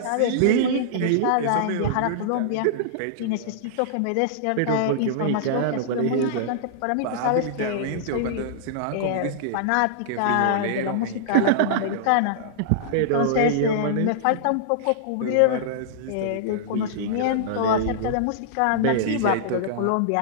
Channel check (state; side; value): different; both; correlation -0.01